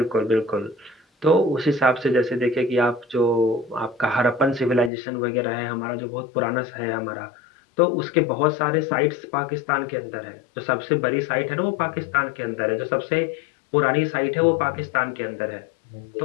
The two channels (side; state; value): right; drops out; at 4.9 s